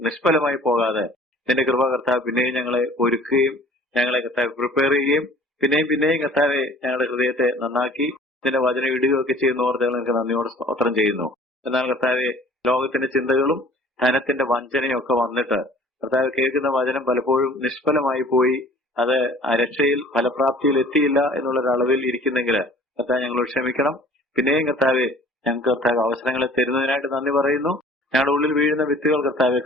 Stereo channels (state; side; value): normal; both; correlation 0.50